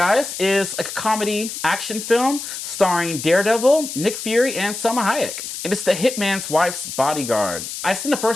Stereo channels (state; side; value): noise; left; hiss, 8 dB below the sound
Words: is a comedy action film starring Daredevil, Nick Fury, and Salma Hayek. And it's The Hitman's Wife's Bodyguard. I've seen the